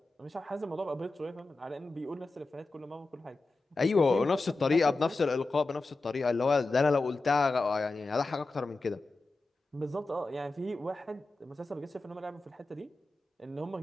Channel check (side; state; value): right; quieter; 3.3 dB